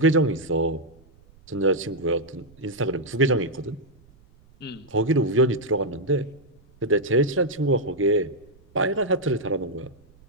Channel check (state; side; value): noise; right; rumble, 28 dB below the sound